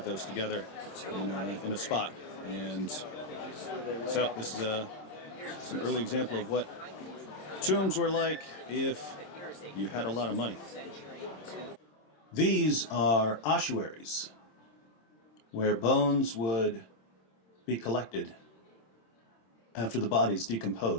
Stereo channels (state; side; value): late; right; 26 ms